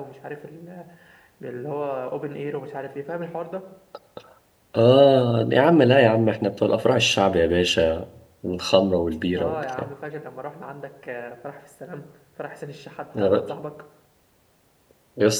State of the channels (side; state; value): both; identical; correlation 1.00